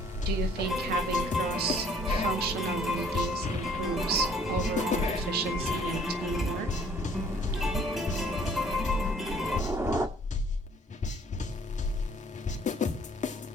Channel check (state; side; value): normal; both; correlation 0.59